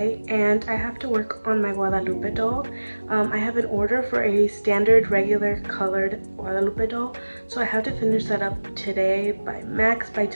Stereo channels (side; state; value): both; inverted; correlation -1.00